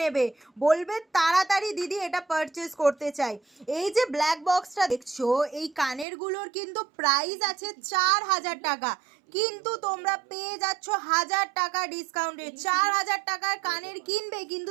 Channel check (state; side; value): drops out; left; at 6.1 s